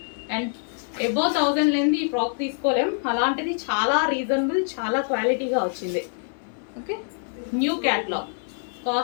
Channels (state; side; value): silent; right; 62 dB below the other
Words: and above 1000 లేని ఈ ఫ్రాక్ తీసుకోలేం, అలాంటిది చాలా రీజనబుల్, చాలా క్వాలిటీగా వచ్చింది. Okay, new catalogue